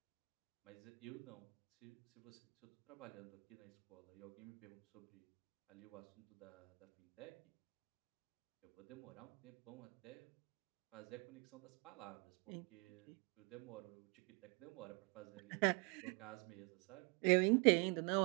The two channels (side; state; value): left; quieter; 31.6 dB